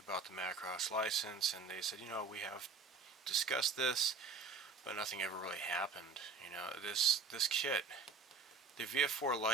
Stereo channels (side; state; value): left; quieter; 4.7 dB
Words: the Macross license, and they said, we have discussed this, but nothing ever really happened. This kit, the VF4